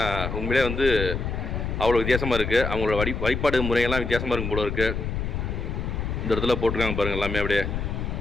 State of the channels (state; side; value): noise; left; rumble, 3 dB below the sound